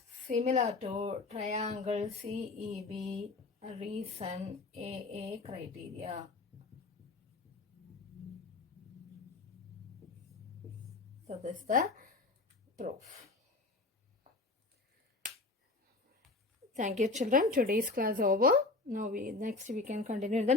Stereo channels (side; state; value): right; quieter; 3.4 dB